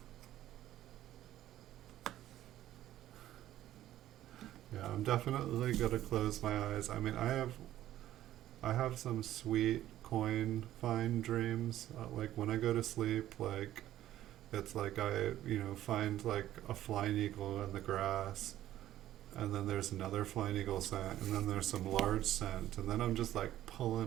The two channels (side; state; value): left; quieter; 13.2 dB